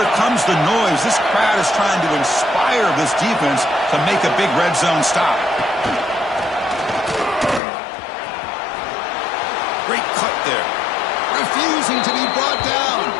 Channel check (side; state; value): right; drops out; at 7.6 s